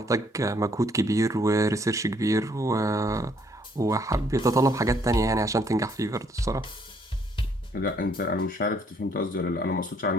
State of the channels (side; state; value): both; normal; correlation 0.67